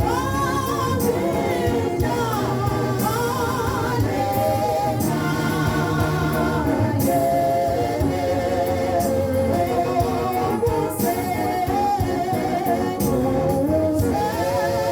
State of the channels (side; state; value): both; identical; correlation 1.00